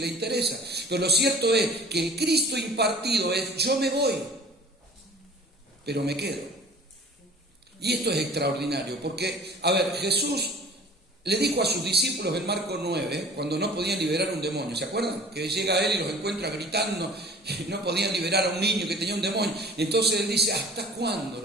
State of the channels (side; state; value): both; normal; correlation 0.47